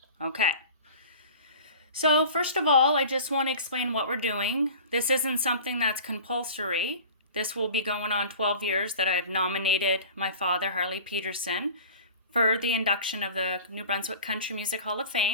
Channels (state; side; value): inverted; both; correlation -0.40